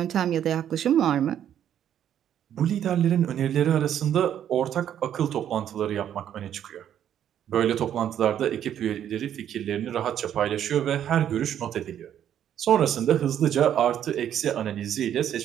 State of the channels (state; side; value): quieter; left; 10.1 dB